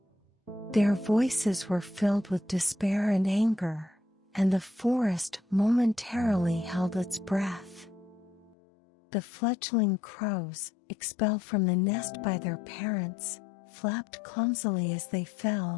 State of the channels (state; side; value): drops out; right; at 8.6 s